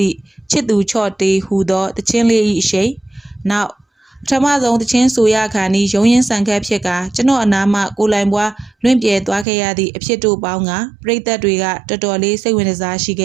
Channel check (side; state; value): left; drops out; at 9.5 s